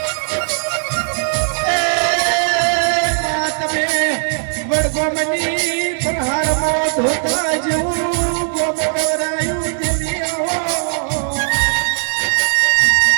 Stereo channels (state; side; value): silent; left; digital silence